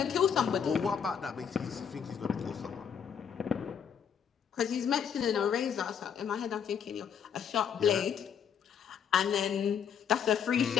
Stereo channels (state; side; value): quieter; right; 7.7 dB